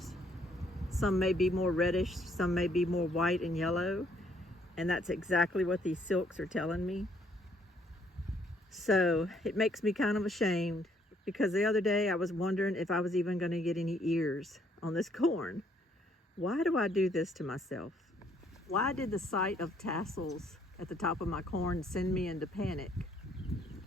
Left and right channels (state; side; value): normal; both; correlation 0.66